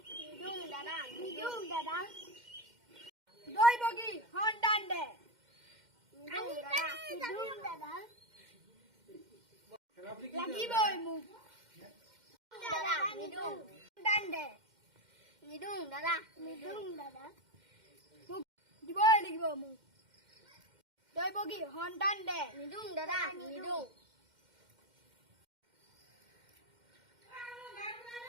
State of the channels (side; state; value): left; late; 2.1 ms